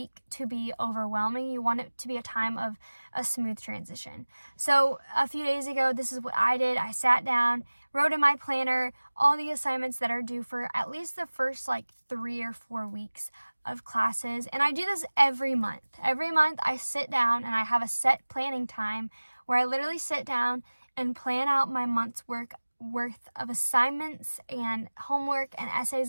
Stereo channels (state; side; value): inverted; both; correlation -1.00